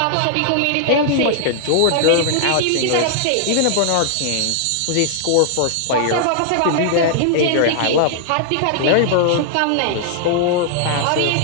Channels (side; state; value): both; different; correlation -0.01